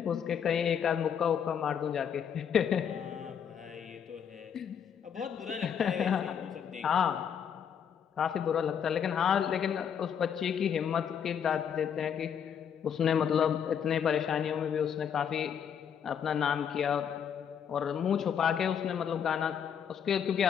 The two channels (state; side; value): quieter; right; 8.0 dB